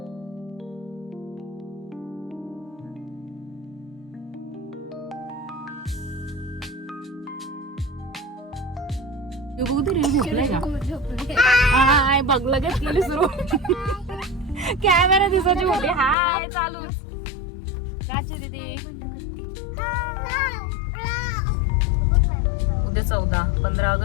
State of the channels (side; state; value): right; drops out; at 16.2 s